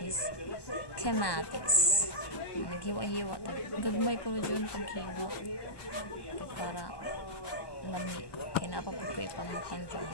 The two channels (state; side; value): late; right; 1.1 ms